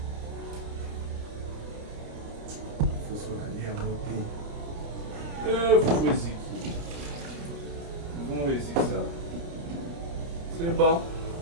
Faut se la lire à moto. Faut essayer. Vamos ver se ça. C'est bon.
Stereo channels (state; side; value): late; left; 30 ms